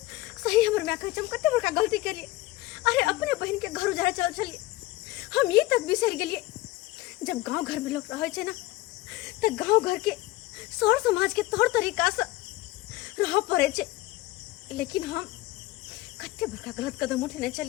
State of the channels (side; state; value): right; quieter; 18.0 dB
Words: सही हमर मैक कहै छै हम कते बड़का गलती केलिए। अरे अपने बहन के घर उजारे चल चलिए हम ये तक बिसर गेलिए जब गांव घर में लोग रहे छै ना तो गांव घर के सौर समाज के तौर तरीका से रह पड़े छै। लेकिन हम कते बड़का गलत कदम उठेने